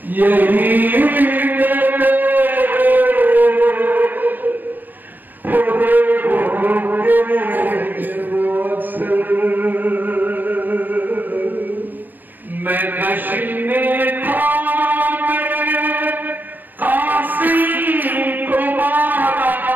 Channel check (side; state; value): left; late; 0.090 ms